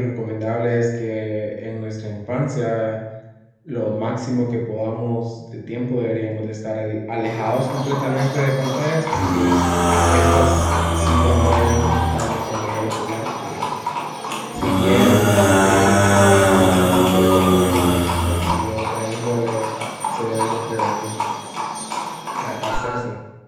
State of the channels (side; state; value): both; identical; correlation 1.00